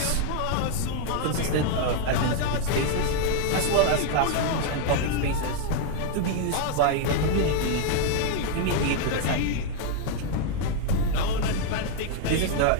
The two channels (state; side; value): different; both; correlation 0.00